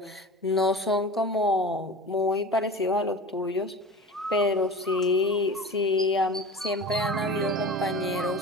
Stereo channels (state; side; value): normal; both; correlation 0.35